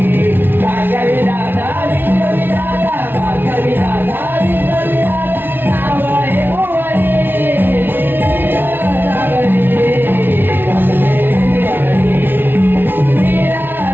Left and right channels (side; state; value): left; late; 0.10 ms